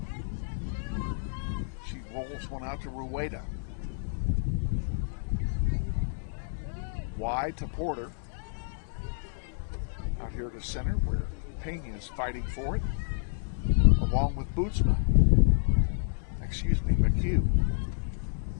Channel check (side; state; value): right; silent; digital silence